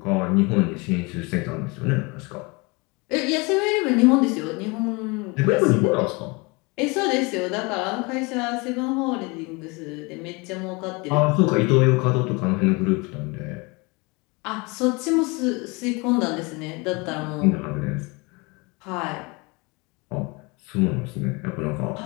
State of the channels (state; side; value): quieter; right; 27.4 dB